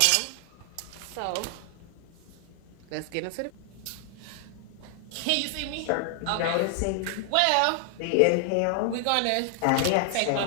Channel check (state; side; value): different; both; correlation 0.00